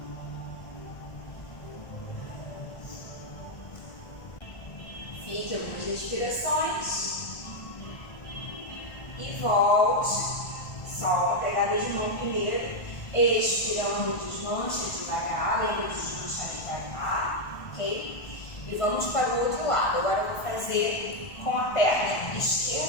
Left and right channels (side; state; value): right; late; 1.5 ms